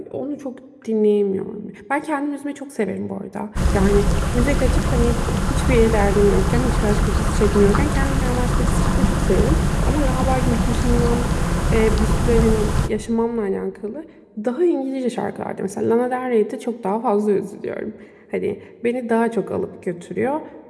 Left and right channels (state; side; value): identical; both; correlation 1.00